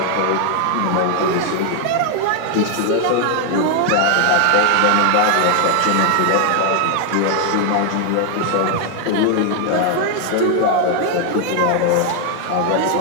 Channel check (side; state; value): both; different; correlation 0.00